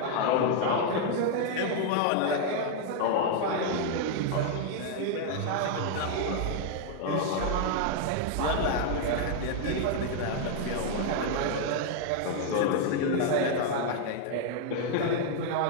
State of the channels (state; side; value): different; both; correlation 0.00